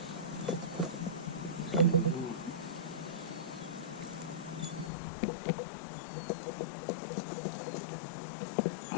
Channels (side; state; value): right; drops out; at 4.9 s